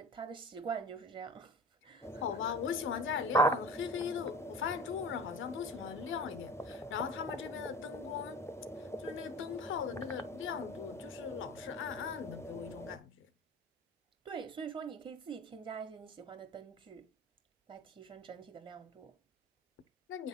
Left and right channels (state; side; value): normal; both; correlation 0.37